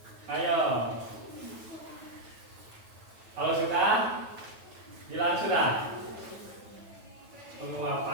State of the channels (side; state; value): left; late; 9.2 ms